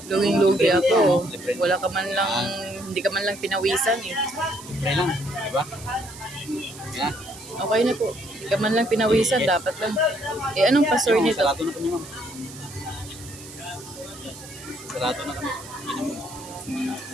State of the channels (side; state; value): right; noise; hiss, 16 dB below the sound